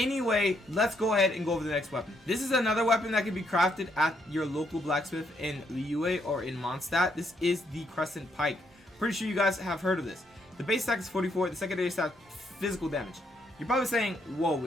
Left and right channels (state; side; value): normal; both; correlation 0.74